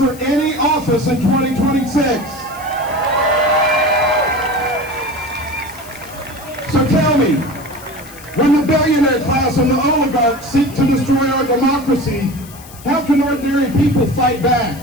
any office in 2026. So tell me, when the billionaire class and the oligarchs seek to destroy our democracy, how can ordinary people fight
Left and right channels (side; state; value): left; noise; hiss, 19 dB below the sound